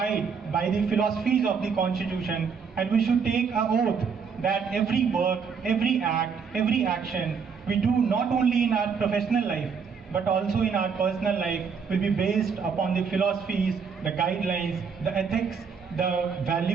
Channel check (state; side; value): quieter; left; 6.0 dB